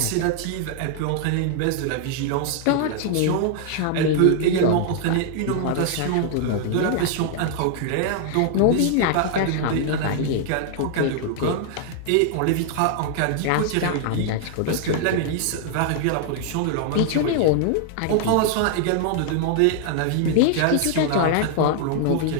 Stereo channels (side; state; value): both; different; correlation 0.00